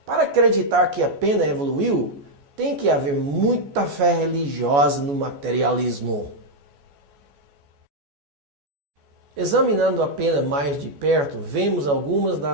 Para acreditar que a pena evoluiu, tem que haver muita fé religiosa no materialismo. Examinando a pena mais de perto, vemos algumas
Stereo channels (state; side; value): late; left; 14 ms